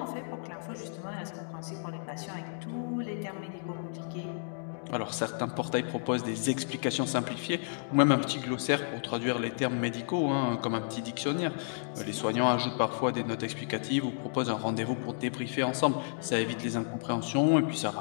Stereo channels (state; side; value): silent; right; digital silence